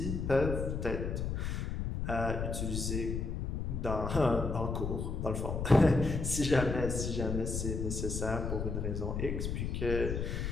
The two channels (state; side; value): noise; left; rumble, 2 dB below the sound